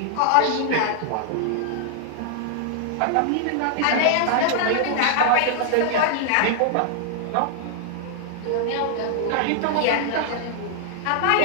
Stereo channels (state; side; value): different; both; correlation 0.00